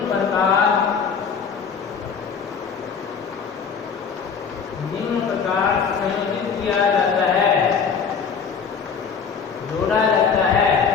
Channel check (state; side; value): quieter; right; 6.2 dB